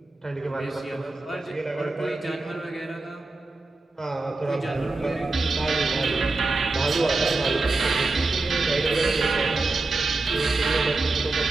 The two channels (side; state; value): left; quieter; 3.4 dB